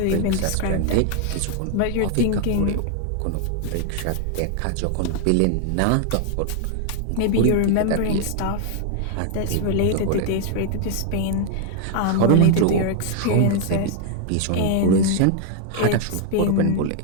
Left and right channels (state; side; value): different; both; correlation 0.00